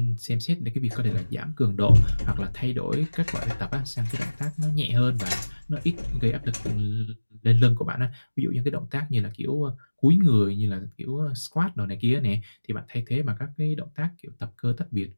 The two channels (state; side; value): inverted; both; correlation -1.00